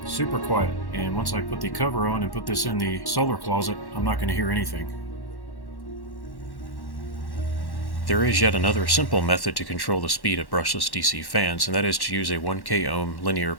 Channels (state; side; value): late; right; 1.1 ms